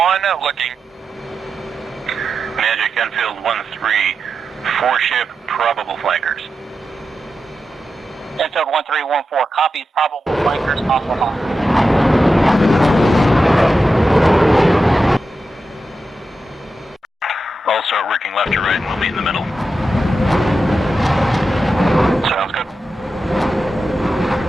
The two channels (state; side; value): normal; both; correlation 0.89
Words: looking. Magic, Enfield 13, 4-ship, probable flankers. Enfield 1314, copy, probable flankers, hostile hot. I'll start working left to right and we'll meet in the middle. Sounds good.